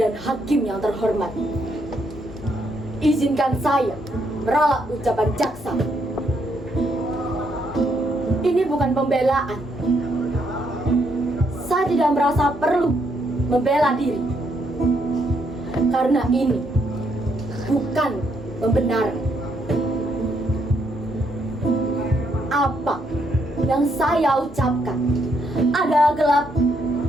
hakim yang terhormat, izinkan saya meralat ucapan jaksa. Ini bukan pembelaan. Saya tidak merasa perlu membela diri, karena ini bukan pembenaran. Apa yang saya ucapkan adalah gelap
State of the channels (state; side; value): normal; both; correlation 0.74